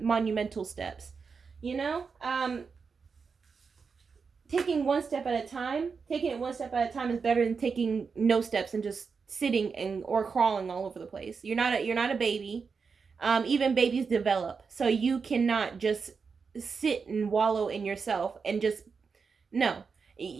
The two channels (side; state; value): left; quieter; 5.3 dB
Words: steps. Taking it one step at a time is better than taking no steps and just sitting or crawling all over the place. You're not a baby. Even babies develop. So you cannot just sit and wallow in yourself and just, no.